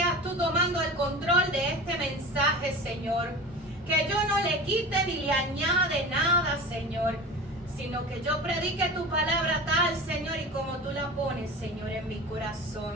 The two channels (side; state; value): both; normal; correlation 0.33